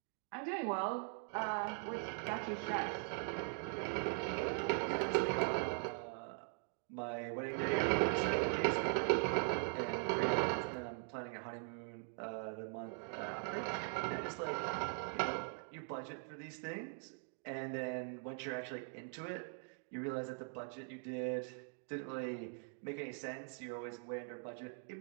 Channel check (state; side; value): silent; left; 50 dB below the other